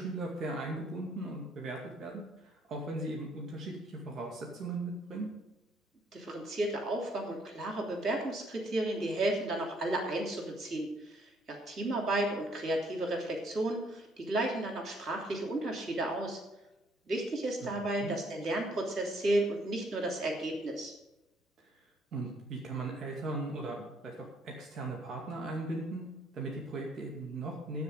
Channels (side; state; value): both; normal; correlation 0.66